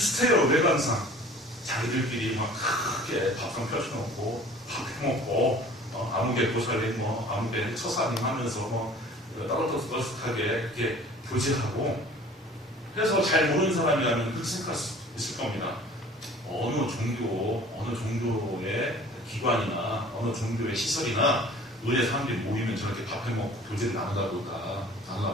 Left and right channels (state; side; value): normal; both; correlation 0.47